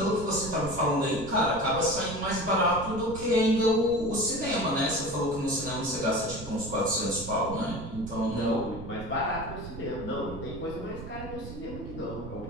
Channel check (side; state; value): right; noise; rumble, 10 dB below the sound